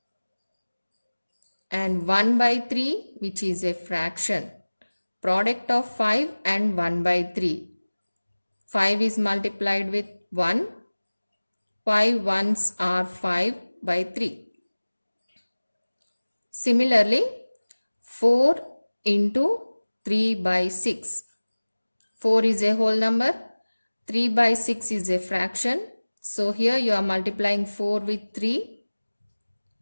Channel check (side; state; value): both; inverted; correlation -1.00